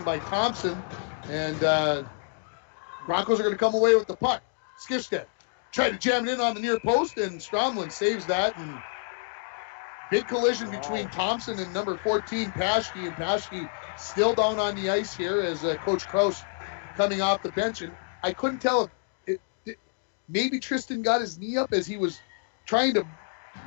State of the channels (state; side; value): silent; right; digital silence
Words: by Thompson. And Broncos are going to come away with the puck. Skifstead tried to jam it in on the near post, and Stromland saves that. And big collision between Thompson and number 14, Paschke. And Paschke still down on the ice here as Coach Kraus coming off the bench. And I couldn't tell if maybe Tristan got his knee up as he was trying to.